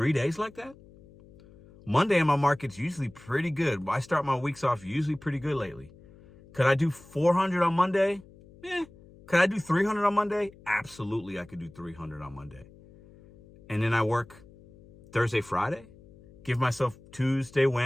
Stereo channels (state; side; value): noise; left; hum, 23 dB below the sound